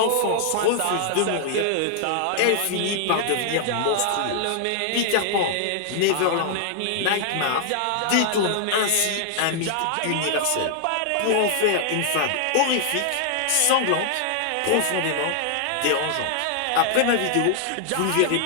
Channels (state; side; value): different; both; correlation 0.00